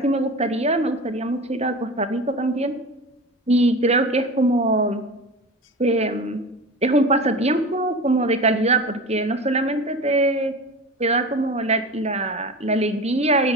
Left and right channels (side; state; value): both; normal; correlation 0.31